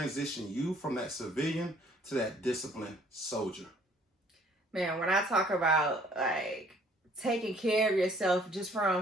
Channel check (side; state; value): both; normal; correlation 0.59